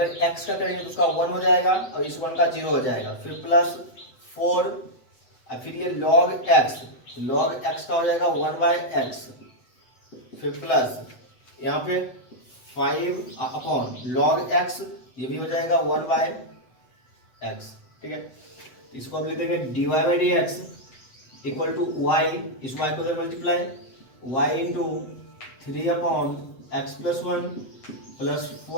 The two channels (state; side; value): late; right; 7.9 ms